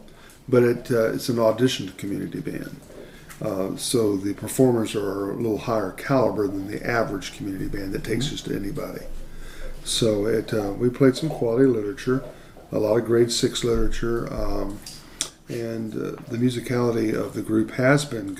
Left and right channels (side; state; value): both; identical; correlation 1.00